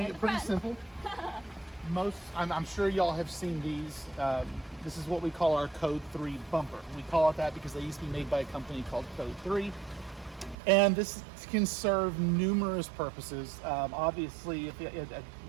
it pretty simple. I'm sure y'all have seen these. This is what we call our Code 3 bumper. We call it that because they used to be made by a company called Code 3. And this can serve numerous purposes. Obviously,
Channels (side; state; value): left; drops out; at 10.6 s